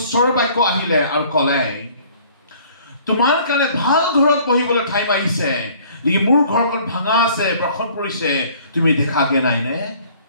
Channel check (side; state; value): both; inverted; correlation -0.55